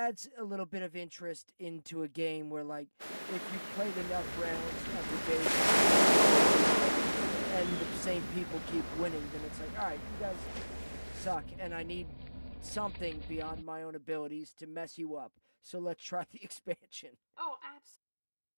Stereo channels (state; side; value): inverted; both; correlation -1.00